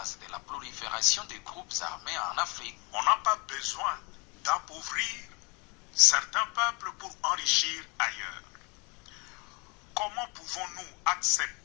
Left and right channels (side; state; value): right; quieter; 30.1 dB